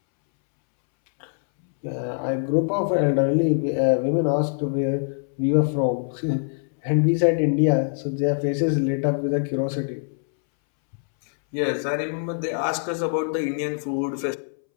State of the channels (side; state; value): right; silent; 63 dB below the other